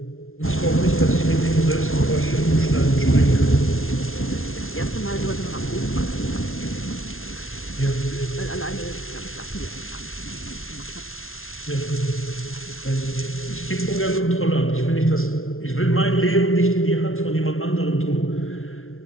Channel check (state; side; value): late; right; 0.61 ms